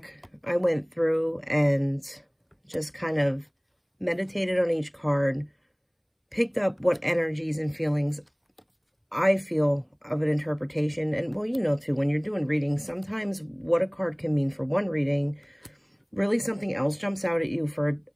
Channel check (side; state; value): both; identical; correlation 1.00